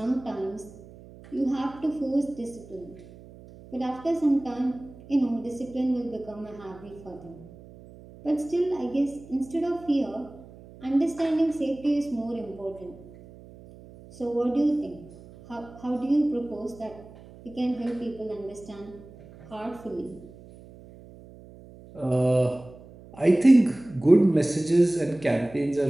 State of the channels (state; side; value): noise; right; hum, 20 dB below the sound